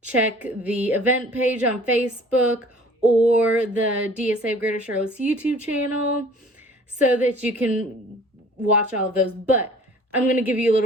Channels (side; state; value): both; normal; correlation 0.50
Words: check the event page on Facebook or the DSA of Greater Charlotte's YouTube channel so that you can watch all of those. But I'm going to give you a